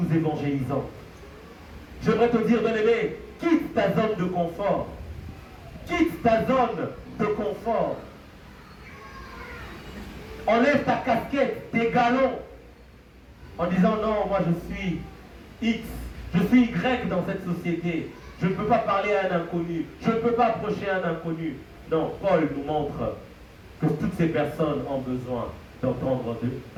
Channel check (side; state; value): both; identical; correlation 1.00